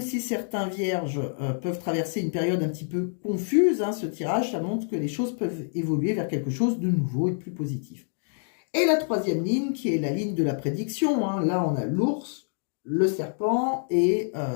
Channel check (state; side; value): silent; right; digital silence